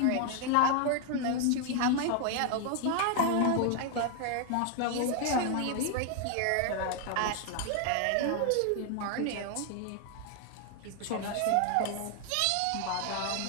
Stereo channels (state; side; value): different; both; correlation 0.00